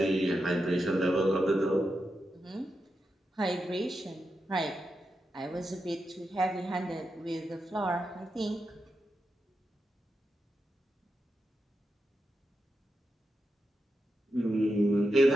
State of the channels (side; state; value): both; normal; correlation 0.87